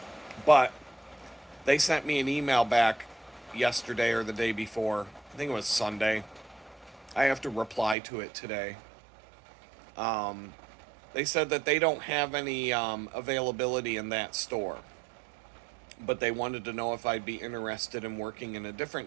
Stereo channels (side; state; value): left; drops out; at 8.0 s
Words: But they sent me an email back yesterday or the day before. I think it was Sunday. I have to reply to it today. They said that they don't have any availability in that store, but they wanted to know if I'd be interested in working in a